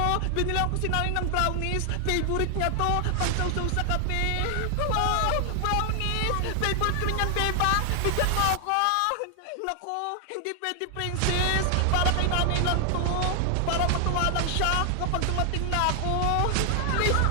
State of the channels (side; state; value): both; different; correlation 0.00